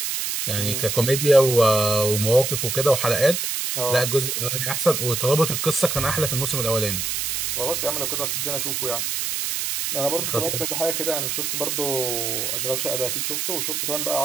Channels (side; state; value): right; noise; hiss, 1 dB below the sound